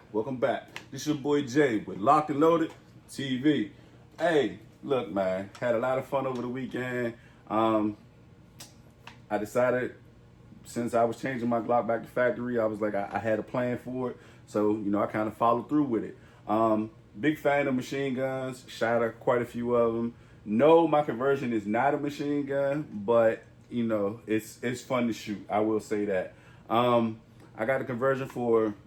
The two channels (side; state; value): both; identical; correlation 1.00